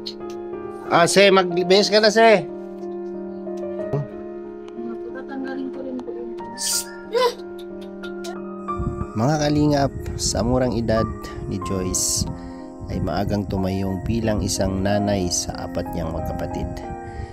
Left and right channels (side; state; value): both; identical; correlation 1.00